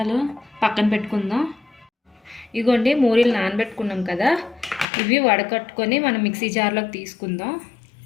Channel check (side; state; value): right; drops out; at 4.9 s